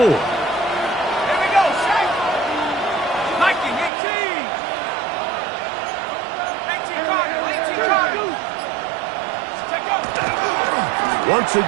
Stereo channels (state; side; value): drops out; left; at 3.9 s